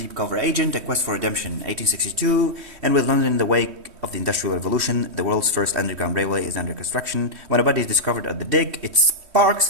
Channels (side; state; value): left; late; 3.1 ms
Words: cover agent, a quest for redemption, 1862, and with London in the wake of the Industrial Revolution, the world's first underground railway is under construction. When a body is discovered at the dig, it sparks